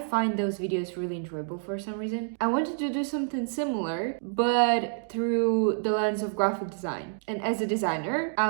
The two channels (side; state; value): left; silent; digital silence